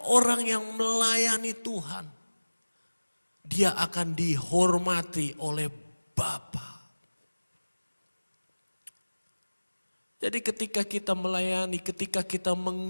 orang yang melayani Tuhan, dia akan dihormati oleh Bapa. Jadi ketika kita melayani, ketika kita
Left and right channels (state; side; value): inverted; both; correlation -1.00